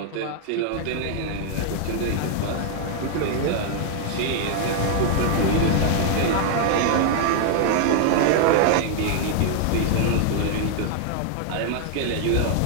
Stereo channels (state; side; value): different; both; correlation 0.00